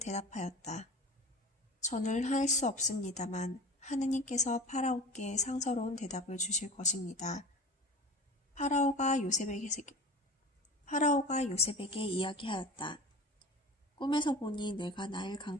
저는 할 수 없습니다만 하느님께서 파라오께 상서로운 대답을 주실 것입니다. 파라오가 요셉에게 이야기하였다. 꿈에서 보니 내가 나일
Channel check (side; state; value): both; normal; correlation 0.36